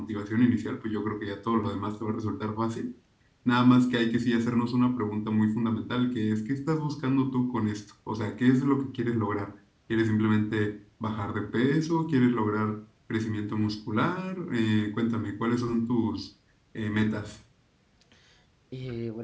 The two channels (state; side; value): identical; both; correlation 1.00